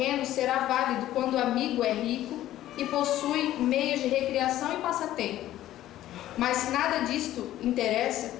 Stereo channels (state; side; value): quieter; right; 13.7 dB